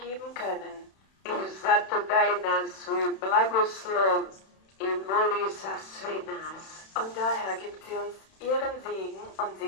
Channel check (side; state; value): right; late; 31 ms